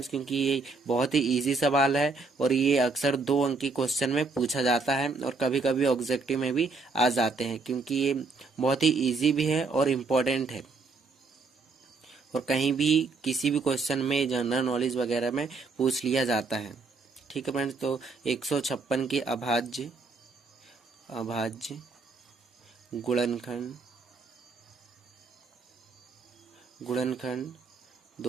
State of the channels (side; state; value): left; quieter; 4.1 dB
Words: क्योंकि ये बहुत ही इजी सवाल है और ये अक्सर 2 अंक की क्वेश्चन में पूछा जाता है और कभी कभी ऑब्जेक्टिव में भी आ जाते हैं, क्योंकि ये बहुत ही ईजी भी है और इम्पोर्टेंट है और कहीं भी किसी भी क्वेश्चन में जनरल नॉलेज वगैरह में पूछ लिया जाता है। ठीक है फ्रेंड्स, तो 156 के अभाज्य गुणनखंड